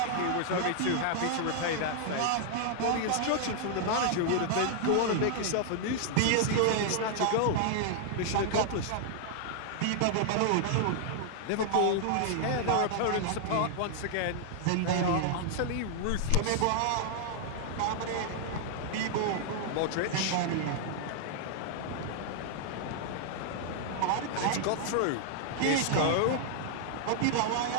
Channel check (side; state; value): both; different; correlation 0.00